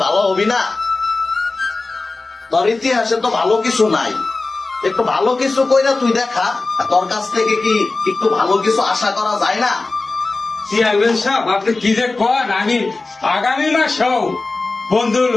ভালো হবি না? তোর ইতিহাসে তো ভালো কিছু নাই, একটু ভালো কিছু কইরা তুই দেখা। তোর কাছ থেকে কি একটু ভালো কিছু আশা করা যায় না? চেয়ারম্যান সাহেব, আপনি কি যে কন, আমি আগামী মাসেও বন্ধুর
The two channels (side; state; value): right; quieter; 3.5 dB